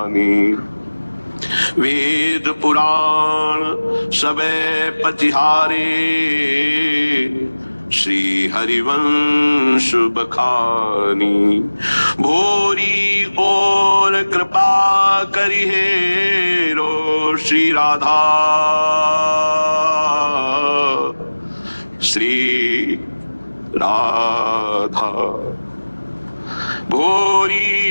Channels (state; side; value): inverted; both; correlation -1.00